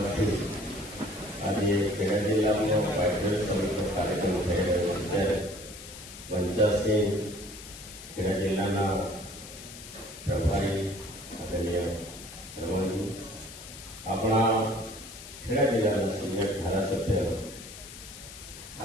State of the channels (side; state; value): left; noise; hiss, 14 dB below the sound